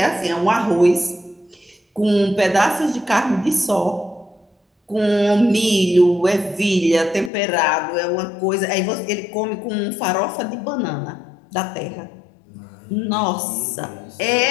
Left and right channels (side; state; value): right; drops out; at 7.3 s